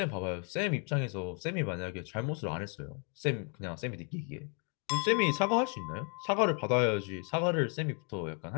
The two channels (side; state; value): right; quieter; 38.0 dB